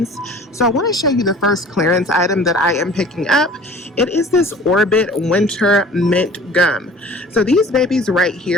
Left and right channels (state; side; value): normal; both; correlation 0.46